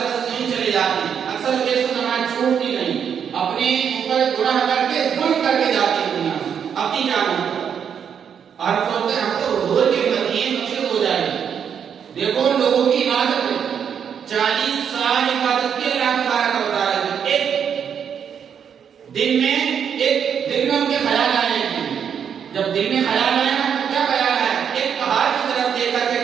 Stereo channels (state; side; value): quieter; left; 7.8 dB